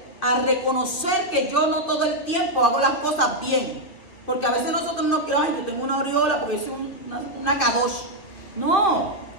a reconocer que yo no todo el tiempo hago las cosas bien. Porque a veces nosotros nos creemos, ay, yo tengo una aureola porque soy una kadosh. No,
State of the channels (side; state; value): right; late; 2.7 ms